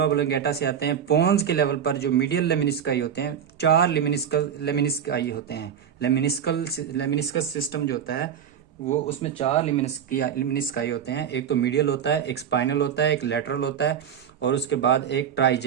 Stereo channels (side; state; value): left; quieter; 8.4 dB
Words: ऑब्लिंगेटा से आते हैं। पोन्स के लेवल पर जो मीडियल लेमिनिस्काई होते हैं, 4 लेमिनिस्काई होते हैं। लेमिनिस्कस सिस्टम जो होता है वो, उसमें 4 लेमिनिस्काई होते हैं। एक तो मीडियल होता है, एक स्पाइनल होता है, एक लेटरल होता है, और उसके बाद एक